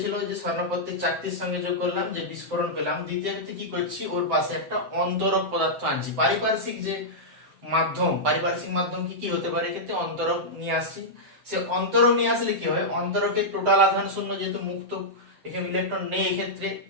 যে স্বর্ণপত্রের চাকতির সঙ্গে যোগ করলাম, যে বিস্ফোরণ পেলাম। দ্বিতীয় ক্ষেত্রে কি করছি, ওর পাশে একটা অন্তরক পদার্থ আনছি। পারিপার্শ্বিক যে মাধ্যম, পারিপার্শ্বিক মাধ্যম কি কি হতে পারে, এক্ষেত্রে অন্তরক নিয়ে আসছি। সে অন্তরক নিয়ে আসলে কি হয়, অন্তরকের টোটাল আধান শূন্য, যেহেতু মুক্ত এখানে ইলেকট্রন নেই, এক্ষেত্রে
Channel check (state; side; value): late; left; 7.9 ms